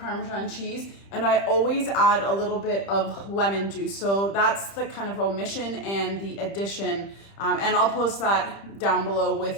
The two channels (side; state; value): right; late; 30 ms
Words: cheese, and I always add a little bit of lemon juice. So that's the kind of omission and the addition. And I'll post that down below